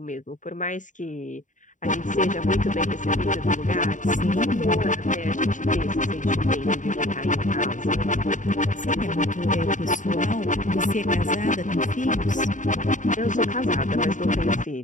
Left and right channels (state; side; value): late; right; 0.37 ms